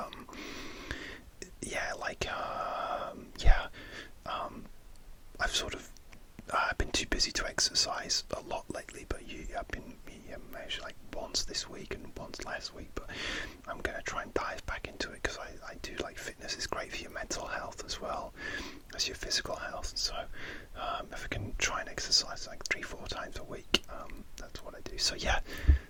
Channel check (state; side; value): identical; both; correlation 1.00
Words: I've been too busy to exercise a lot lately, but I've been measured like once this week and once last week, but I'm going to try and dive back into it, because I do like fitness. Is great for your mental health as well as your physical health. So if I can try and exercise like 3-4 times a week, that's what I do. So